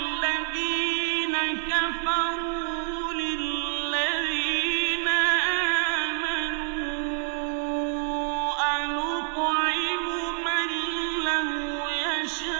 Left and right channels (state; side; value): silent; left; 60 dB below the other